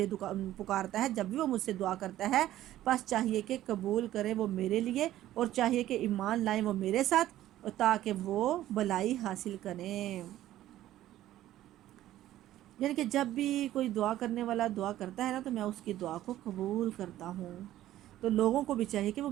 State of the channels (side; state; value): left; quieter; 13.8 dB